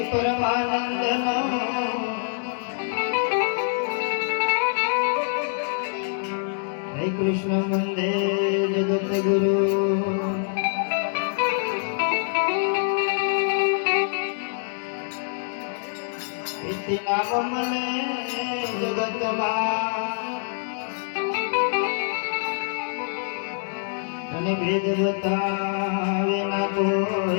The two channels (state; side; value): silent; right; digital silence